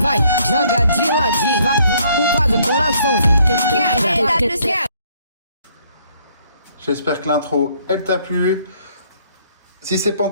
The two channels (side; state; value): both; inverted; correlation -0.65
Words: vai, joga de ladinho, vai, faz o coraçãozinho, quebra. J'espère que l'intro, elle t'a plu. Si c'est pas